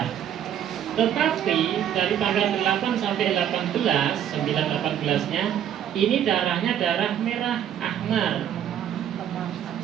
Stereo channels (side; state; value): left; quieter; 10.0 dB